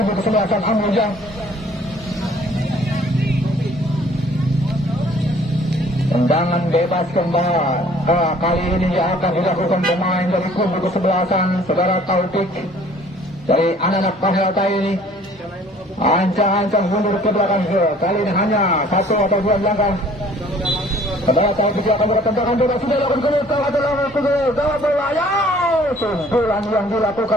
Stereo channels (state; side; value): normal; both; correlation 0.55